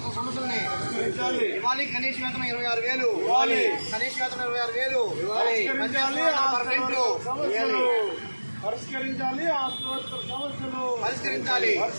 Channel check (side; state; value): both; inverted; correlation -1.00